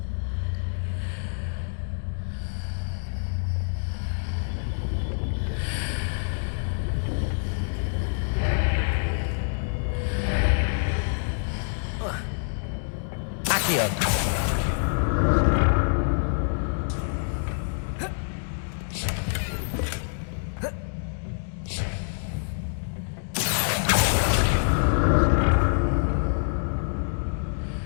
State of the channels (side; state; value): right; silent; digital silence